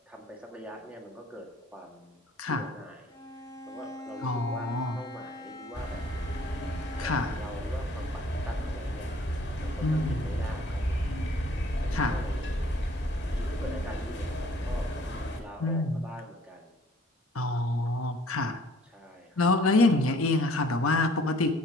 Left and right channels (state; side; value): normal; both; correlation 0.57